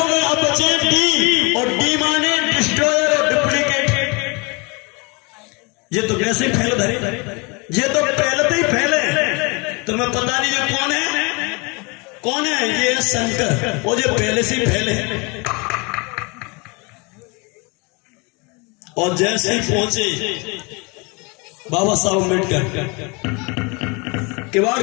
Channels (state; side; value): quieter; right; 29.5 dB